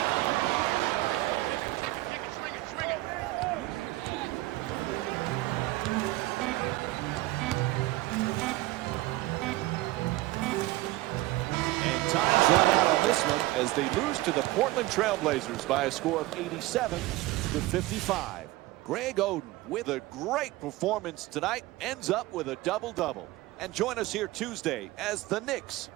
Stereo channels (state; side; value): quieter; left; 18.4 dB